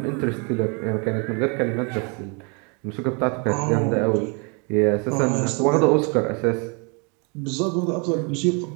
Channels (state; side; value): quieter; left; 34.3 dB